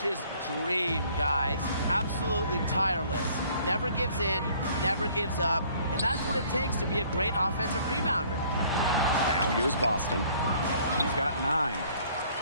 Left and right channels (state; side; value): inverted; both; correlation -0.58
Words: dream, guys. Absolutely tireless. Never gives in, never gives up. And that's what it takes to be a great offensive rebounder. Now here's Boston. She's got 9.